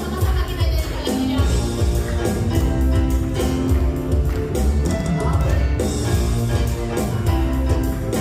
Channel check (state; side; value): identical; both; correlation 1.00